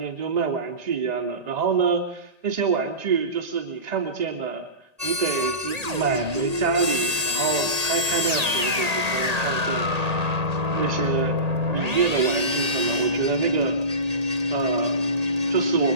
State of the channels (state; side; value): late; left; 1.8 ms